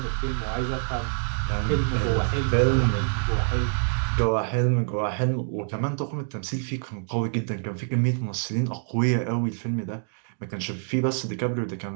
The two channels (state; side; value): silent; left; digital silence